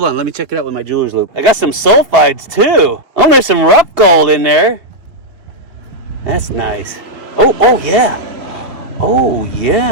on, let me check it out with my jeweler's loupe. I got some sulfides too. Oh, there's some rough gold in there. That's nice. Oh yeah. Oh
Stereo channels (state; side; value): late; left; 2.3 ms